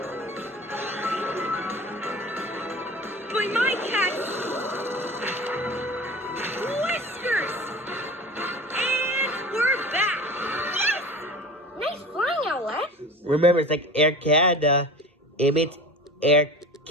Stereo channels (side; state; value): both; normal; correlation 0.36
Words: But my cat's whiskers! And we're back! Yes! Nice flying outlet. Remember, it's like Air Canada. It means Air